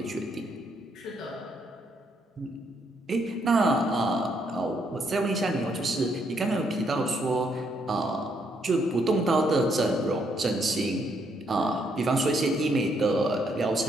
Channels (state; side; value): normal; both; correlation 0.73